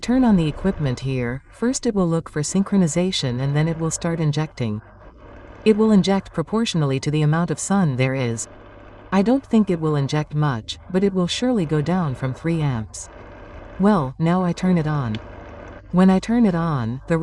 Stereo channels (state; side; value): identical; both; correlation 1.00